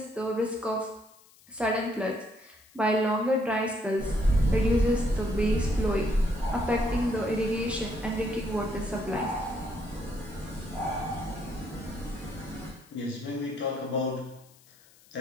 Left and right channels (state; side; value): noise; left; hiss, 27 dB below the sound